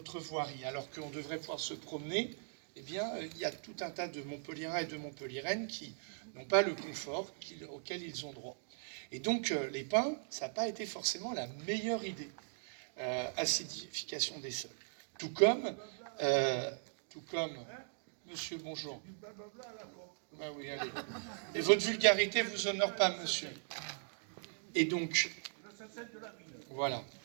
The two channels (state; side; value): silent; left; digital silence